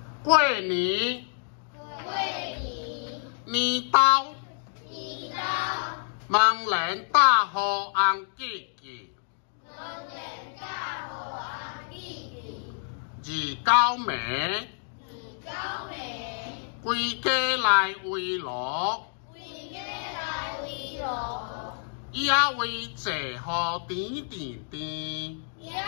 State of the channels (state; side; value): silent; right; digital silence